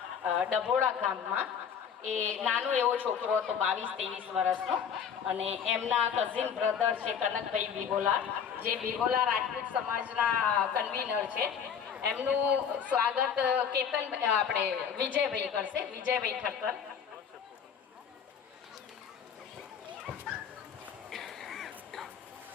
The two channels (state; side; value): quieter; right; 7.5 dB